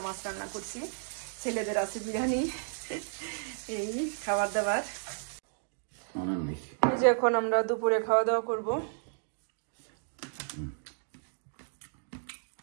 মাছ রান্না করছি। ছেলেদের আছে বিরিয়ানি, এই খাবার দাবার। এই যে এখন আমরা দুপুরে খাওয়া দাওয়া করবো।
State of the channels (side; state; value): left; silent; digital silence